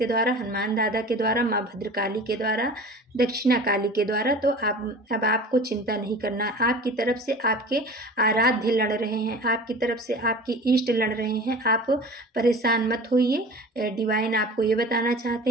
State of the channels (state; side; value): normal; both; correlation 0.39